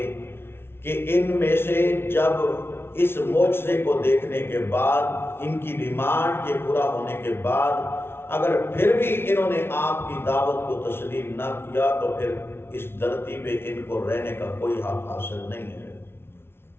کہ ان میں سے جب اس معجزے کو دیکھنے کے بعد، ان کی ڈیمانڈ کے پورا ہونے کے بعد اگر پھر بھی انہوں نے آپ کی دعوت کو تسلیم نہ کیا تو پھر اس دھرتی پہ ان کو رہنے کا کوئی حق حاصل نہیں ہے۔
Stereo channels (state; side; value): late; right; 0.12 ms